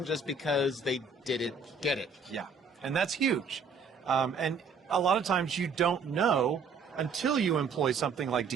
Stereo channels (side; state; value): left; quieter; 4.8 dB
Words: just because they didn't get it? Yeah, and that's huge. And a lot of times you don't know until you employ something like